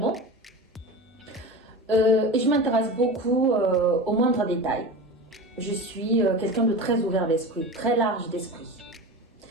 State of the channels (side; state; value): both; normal; correlation 0.29